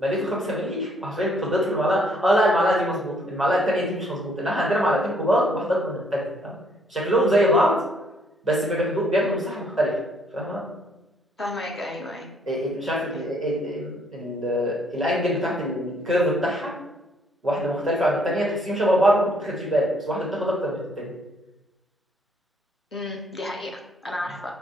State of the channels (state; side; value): normal; both; correlation 0.66